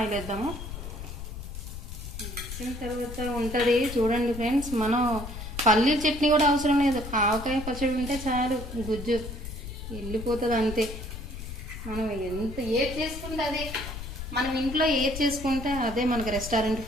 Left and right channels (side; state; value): left; noise; rumble, 9 dB below the sound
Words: వేద్దాము. వేసిన తర్వాత ఉంటుంది చూడండి ఫ్రెండ్స్, మనం పల్లీల చట్నీ కూడా అవసరం లేదు. ఆవకాయ పచ్చడి ఉంటే చాలు, గుజ్జు వెళ్ళిపోతుంది అంతే. మనం ఏది చేసుకుంటే అదే, మనం ఇంట్లో ఏది చేసుకుంటే అదే మనకి రెస్టారెంట్